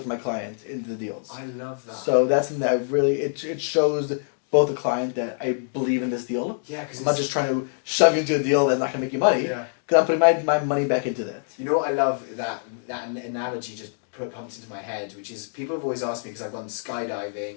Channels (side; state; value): right; silent; digital silence